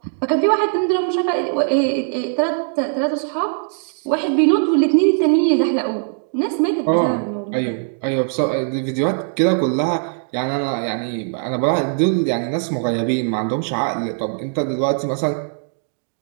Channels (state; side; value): silent; left; 61 dB below the other